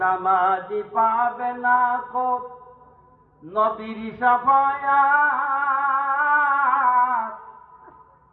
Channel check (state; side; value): identical; both; correlation 1.00